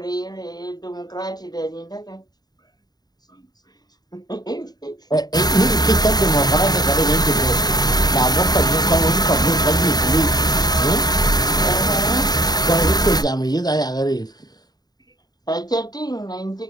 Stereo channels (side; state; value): right; late; 0.19 ms